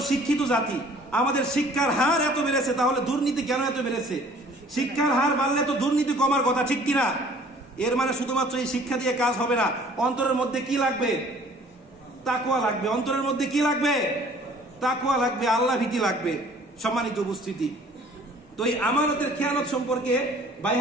শিক্ষিত জাতি, আমাদের শিক্ষার হার এত বেড়েছে, তাহলে দুর্নীতি কেন এত বেড়েছে? শিক্ষার হার বাড়লে তো দুর্নীতি কমার কথা, ঠিক কিনা? এর মানে শুধুমাত্র এই শিক্ষা দিয়ে কাজ হবে না, অন্তরের মধ্যে কি লাগবে? তাকওয়া লাগবে। অন্তরের মধ্যে কি লাগবে? তাকওয়া লাগবে, আল্লাহ ভীতি লাগবে। সম্মানিত উপস্থিতি, তো এই আমানতের খেয়ানত সম্পর্কে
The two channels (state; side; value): normal; both; correlation 0.53